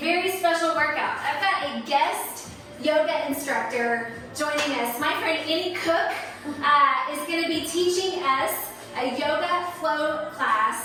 special workout. I've got a guest yoga instructor joining us. My friend Koch is going to be teaching us a yoga flow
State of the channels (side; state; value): both; identical; correlation 1.00